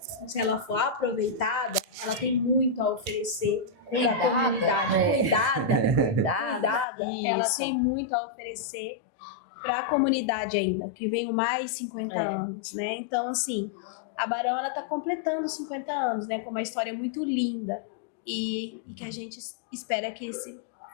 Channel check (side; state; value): right; drops out; at 6.9 s